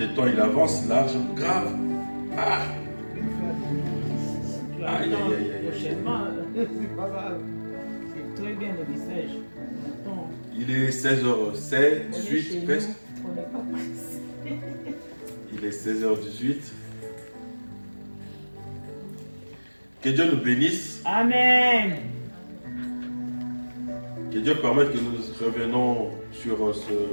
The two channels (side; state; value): both; inverted; correlation -1.00